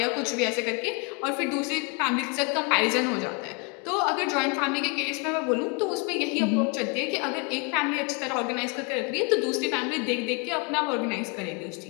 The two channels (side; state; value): right; quieter; 32.3 dB